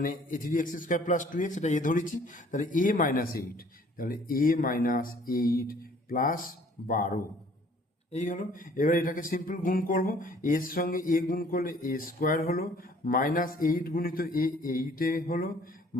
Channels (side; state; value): both; normal; correlation 0.56